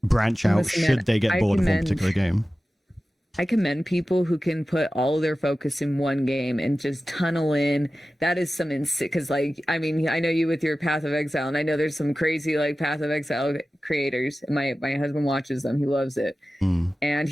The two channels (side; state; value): both; normal; correlation 0.95